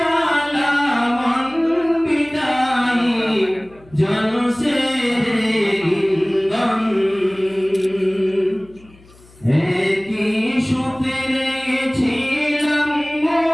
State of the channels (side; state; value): left; noise; hum, 26 dB below the sound